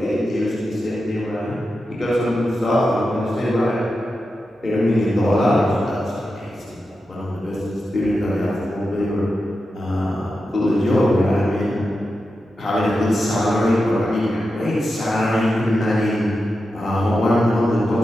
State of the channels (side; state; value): both; normal; correlation 0.90